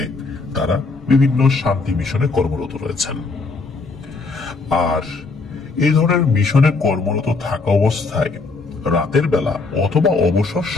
তারা বিভিন্ন শান্তি মিশনে কর্মরত রয়েছেন। আর এই ধরনের মিশনে কর্মরত থাকা অবস্থায় রাতের বেলা অথবা অবসর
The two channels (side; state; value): right; quieter; 3.9 dB